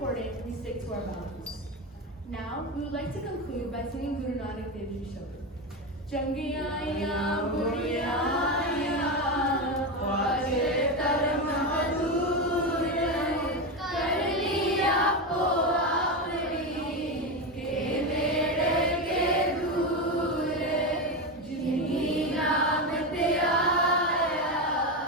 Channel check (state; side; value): normal; both; correlation 0.15